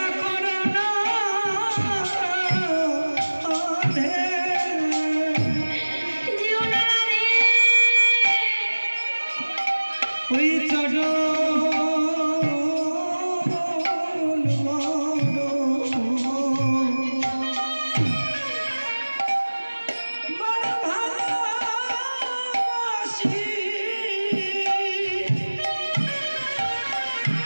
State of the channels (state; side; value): inverted; both; correlation -1.00